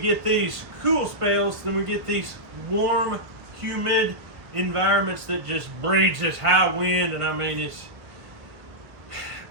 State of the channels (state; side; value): late; left; 1.1 ms